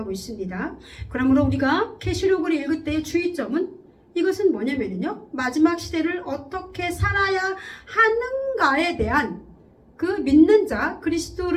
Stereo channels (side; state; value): both; identical; correlation 1.00